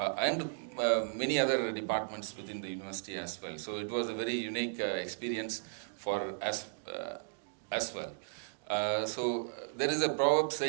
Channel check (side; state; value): left; silent; digital silence